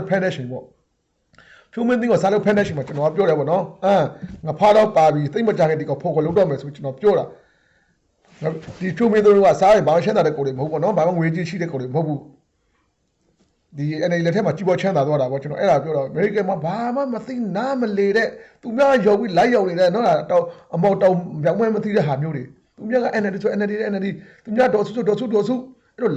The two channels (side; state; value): both; identical; correlation 1.00